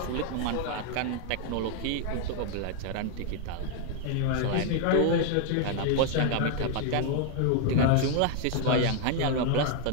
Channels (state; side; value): different; both; correlation 0.00